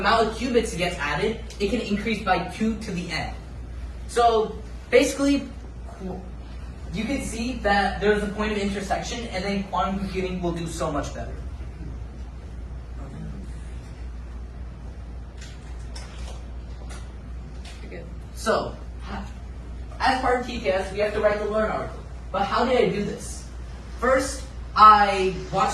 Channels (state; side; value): identical; both; correlation 1.00